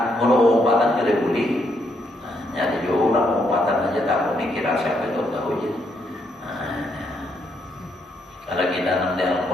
mengumpatan tidak boleh. Nah, jadi orang mengumpatan aja tak boleh kira siapa itu tahu aja. Nah, kalau kita nanti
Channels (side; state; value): both; normal; correlation 0.75